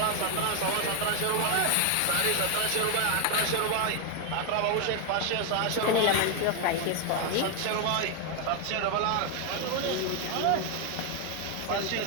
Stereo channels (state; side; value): different; both; correlation 0.01